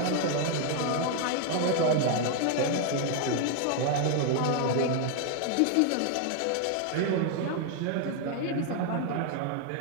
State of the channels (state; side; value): different; both; correlation 0.00